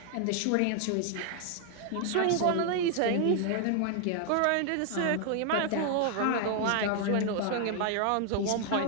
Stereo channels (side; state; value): both; different; correlation 0.00